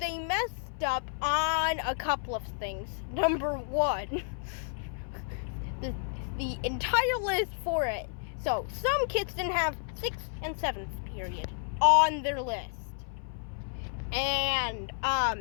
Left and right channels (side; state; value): right; silent; 57 dB below the other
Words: messed up on a couple of things. Number one, the entire list for it. So some kids didn't have 6th and 7th period on their list. And